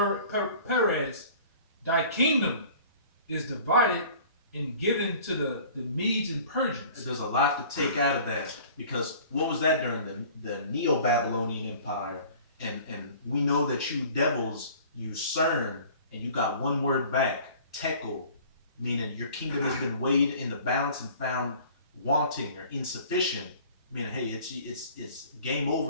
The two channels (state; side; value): inverted; both; correlation -0.48